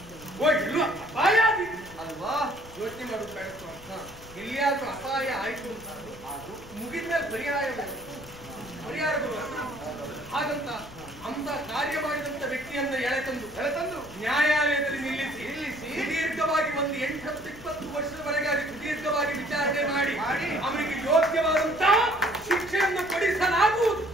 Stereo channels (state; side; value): noise; left; rumble, 19 dB below the sound